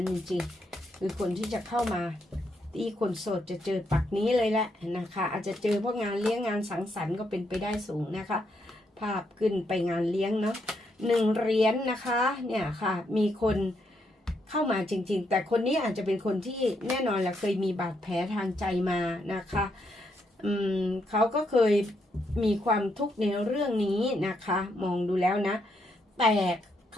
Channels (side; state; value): both; normal; correlation 0.77